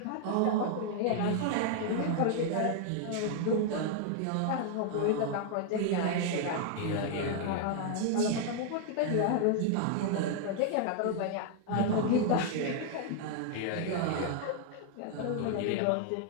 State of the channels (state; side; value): different; both; correlation 0.00